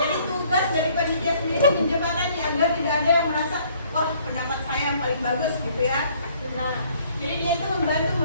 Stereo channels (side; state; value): both; inverted; correlation -0.61